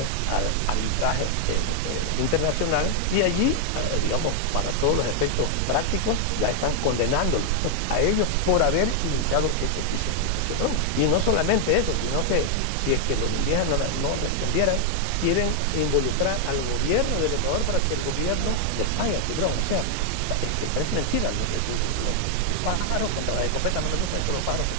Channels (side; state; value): both; different; correlation 0.00